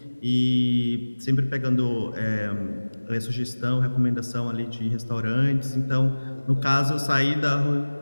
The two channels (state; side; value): inverted; both; correlation -1.00